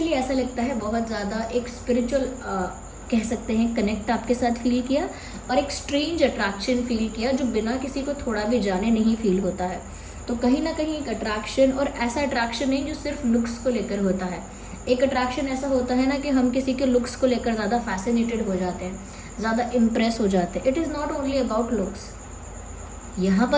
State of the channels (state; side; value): identical; both; correlation 1.00